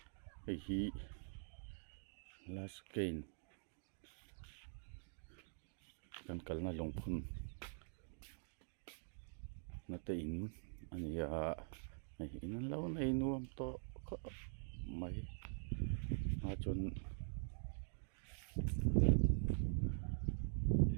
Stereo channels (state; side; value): silent; left; digital silence